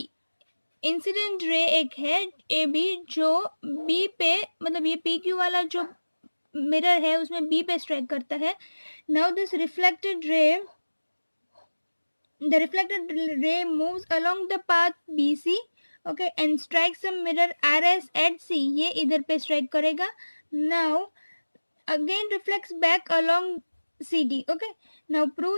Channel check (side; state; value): both; inverted; correlation -1.00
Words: Incident ray एक है AB जो B पे, मतलब ये PQ वाला जो मिरर है उसमें B पे स्ट्राइक करता है. Now this reflected ray, the reflected ray moves along the path BC, okay, and strikes the mirror RS at C. ये इधर पे strike करेगा. Now again reflects back along CD. okay, now